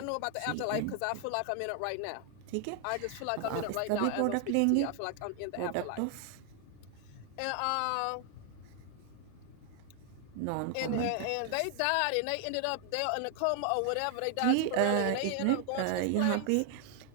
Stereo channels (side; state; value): both; different; correlation 0.00